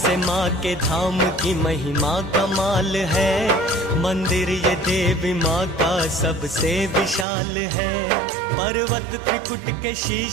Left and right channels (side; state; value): left; drops out; at 7.2 s